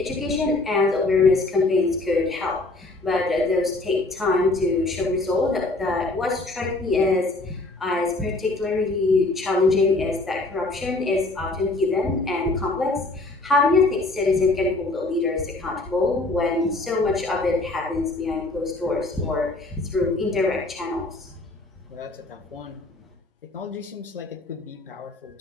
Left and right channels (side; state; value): right; quieter; 3.0 dB